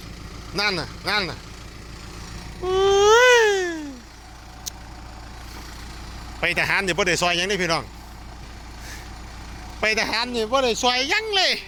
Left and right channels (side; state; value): both; identical; correlation 1.00